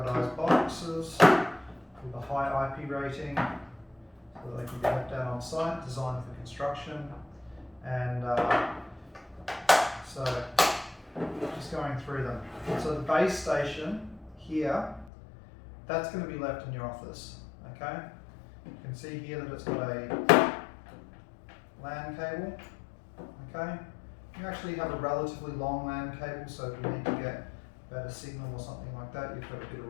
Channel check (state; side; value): drops out; right; at 15.1 s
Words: boxes with a high IP rating, so that they can be left out on site, designed for construction. And so just going through them. So the base station here, that's going to be left in your office. Okay, you can see here that it's got a LAN cable. Okay, you actually have a relatively long LAN cable, so if you need to get better signal or something like that, you've got a bit of